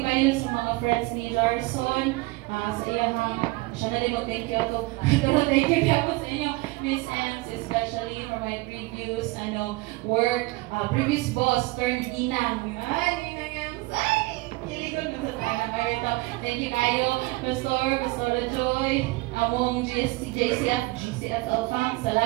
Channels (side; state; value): left; quieter; 22.3 dB